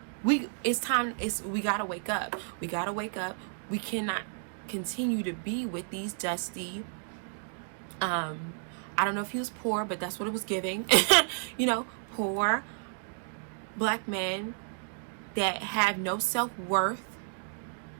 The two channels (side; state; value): left; silent; 57 dB below the other